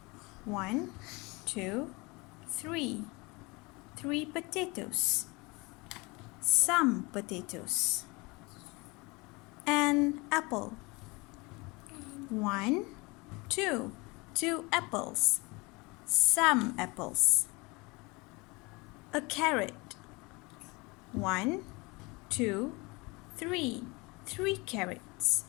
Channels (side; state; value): right; quieter; 25.9 dB